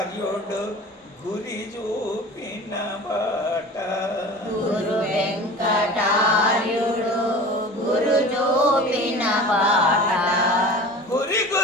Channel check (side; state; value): both; normal; correlation 0.37